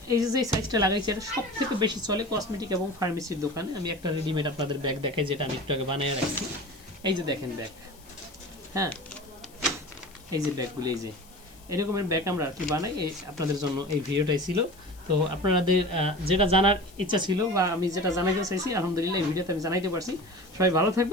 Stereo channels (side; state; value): left; noise; hiss, 25 dB below the sound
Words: এই যে সাইজটা লাগাইছি এটা সব থেকে বেশি চলে কসমেটিক এবং ফার্মেসির দোকানে। আমি একটা রেডিমেড আপনাদের ব্যাগ দেখাই, যেটা আমি একটু আগে বানিয়ে রাখছি। এই যে দেখেন ব্যাগ, হ্যাঁ এই যে ব্যাগগুলো, এই যে এরকমের ব্যাগ আমরা আর কি বানাই। এই আপনাদের জন্য এই ভিডিওটাই ছিল। তো আপনাদের যেটা জানার ইচ্ছা ছিল বা আমি যেটা জানাইতে চাইছি, আলহামদুলিল্লাহ এই ভিডিওতে আমি জানাইতে পারছি। সবাই ভালো